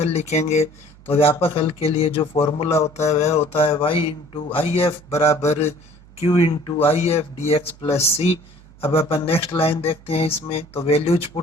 लिखेंगे, तो व्यापक हल के लिए जो फॉर्मूला होता है वह होता है y इंटू आई एफ बराबर q into I F D x plus सी। अब अपन नेक्स्ट लाइन देखते हैं, इसमें तो वैल्यूज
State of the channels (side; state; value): right; noise; hum, 24 dB below the sound